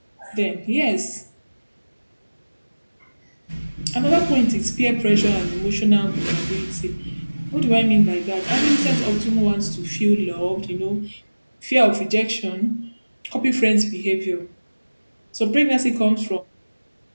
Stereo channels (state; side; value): inverted; both; correlation -1.00